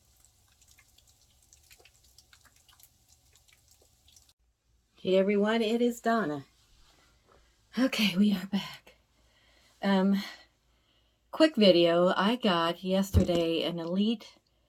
Hey everyone, it is Donna. Okay, we are back. Quick video. I got yesterday an elite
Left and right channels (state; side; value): identical; both; correlation 1.00